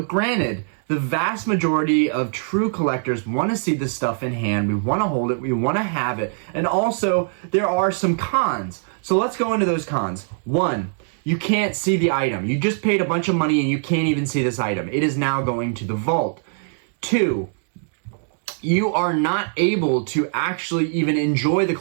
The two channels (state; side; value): silent; left; digital silence